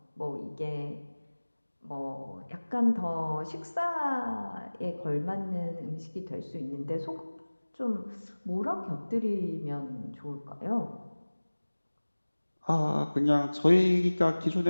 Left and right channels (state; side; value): inverted; both; correlation -1.00